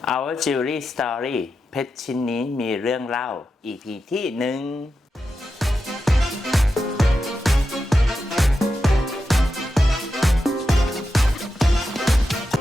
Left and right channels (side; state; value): both; normal; correlation 0.89